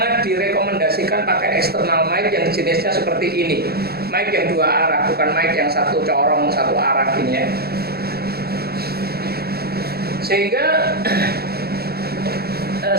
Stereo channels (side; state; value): left; late; 0.46 ms